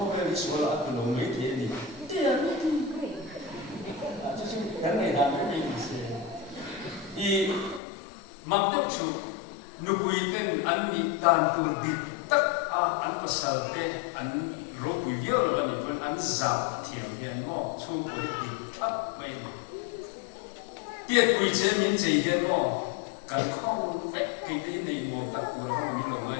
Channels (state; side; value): drops out; right; at 7.8 s